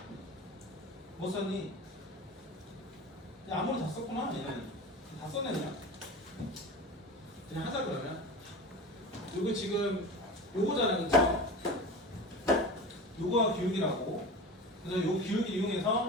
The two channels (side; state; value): both; normal; correlation 0.31